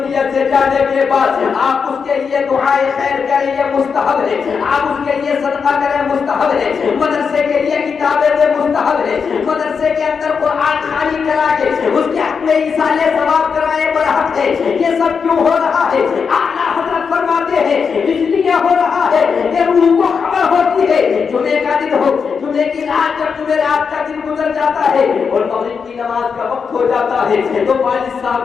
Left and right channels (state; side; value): quieter; right; 5.9 dB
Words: سے جانے کے بعد آپ اس کے لیے دعائے خیر کریں، یہ مستحب ہے، آپ اس کے لیے صدقہ کریں، مستحب ہے، مدرسے کے لیے کتابیں دیں، مستحب ہے، مدرسے کے اندر قرآن خوانی کرا کے اس کے حق میں ایصال ثواب کرائے برحق ہے۔ یہ سب کیوں ہو رہا ہے؟ اعلیٰ حضرت فرماتے ہیں اس لیے ہو رہا ہے کہ روح کو خبر ہوتی ہے جمعے کا دن ہو، جمعے کی رات جب جمعرات کا دن گزر جاتا ہے اور مغرب کی نماز کا وقت ہو جاتا ہے تو والد